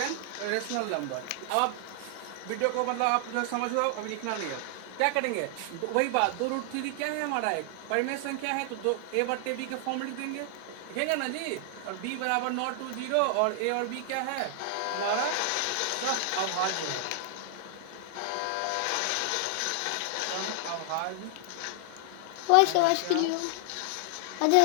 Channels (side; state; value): both; different; correlation 0.00